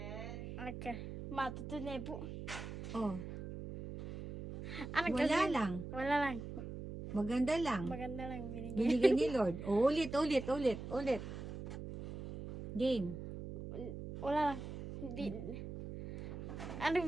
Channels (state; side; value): noise; right; hum, 8 dB below the sound